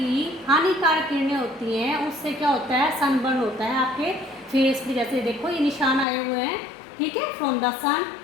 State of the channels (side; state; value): right; drops out; at 6.1 s